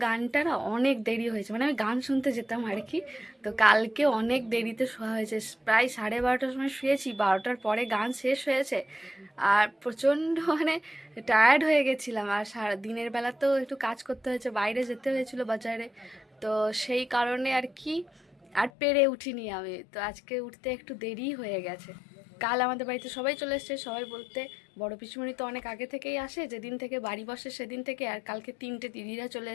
গানটা না অনেক দেরি হয়েছে, মানে আমি গান শুনতে যেতাম আর কি। তো কালকে অনেক দেরিতে শোয়া হয়েছে, প্রায় 12:30টার সময় শুয়েছি, 12টার পরে গান শেষ হয়েছে। আর প্রচণ্ড মানে টায়ার্ড হয়ে গেছিলাম। আর সারা দিনের বেলাতেও একটু কাজ করতে হয়েছে, বাইরে যেতে হয়েছিল বাজারে। তো সেই কারণে আর কি আর পেরে উঠিনি আমি। তো আজকে উঠতে একটু দেরি হয়ে গেছে। কাল আমাদের বাড়িতে সবাই চলে এসছে, সবাই বলতে বড় পিসিমণি তো অনেক আগে থেকেই আসে, যেদিন থেকে বাড়ি বসে সেদিন থেকে। আর কালকে 3টে দিদিরা চলে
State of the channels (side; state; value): right; drops out; at 18.7 s